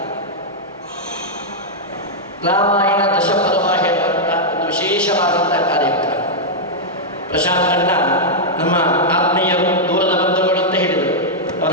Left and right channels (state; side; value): normal; both; correlation -0.06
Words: ರಾಮಾಯಣ ದಶಪರ್ವ ಹೇಳುವಂಥ ಒಂದು ವಿಶೇಷವಾದಂಥ ಕಾರ್ಯಕ್ರಮ. ಪ್ರಶಾಂತಣ್ಣ ನಮ್ಮ ಆತ್ಮೀಯರು, ದೂರದ ಬಂಧುಗಳು ಅಂತ ಹೇಳಿದರು.